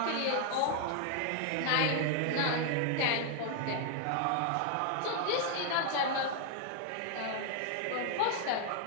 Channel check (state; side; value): different; both; correlation 0.00